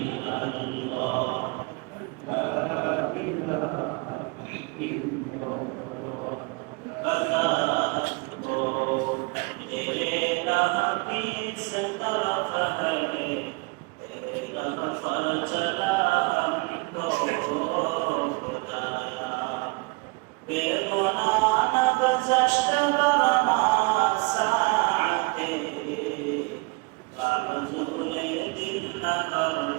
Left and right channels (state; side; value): quieter; left; 29.0 dB